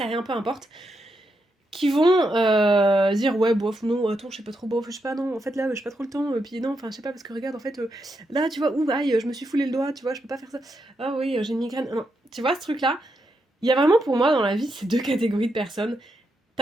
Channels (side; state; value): both; normal; correlation 0.83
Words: rien, peu importe, qui vont dire ouais bof non attends je sais pas trop bof je sais pas non en fait là j'ai pas trop le temps puis non enfin je sais pas parce que regarde en fait là tu vois ouh aïe je me suis foulé le doigt tu vois je peux pas faire ça ah oui j'ai une migraine non tu vois ce truc là il y a vraiment pour moi dans la vie ces 2 catégories de personnes.